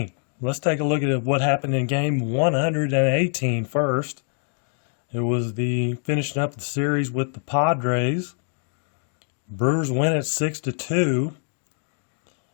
Let's take a look at what happened in game 118 first. It was the finishing up the series with the Padres. Brewers win it 6-2,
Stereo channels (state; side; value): silent; right; 56 dB below the other